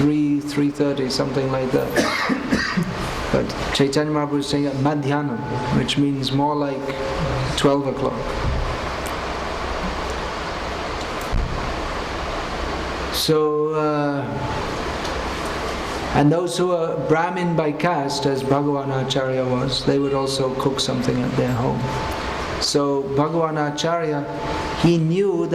something like that. But Chaitanya Mahaprabhu is saying Madhyanam, which means more like 12 o'clock. So, and those who are Brahmin by caste, as Bhagavanacharya was, they would also cook something at their home. So Bhagavanacharya, he knew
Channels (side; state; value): both; identical; correlation 1.00